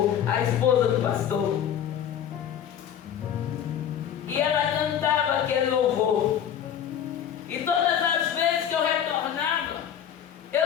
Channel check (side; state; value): right; quieter; 9.3 dB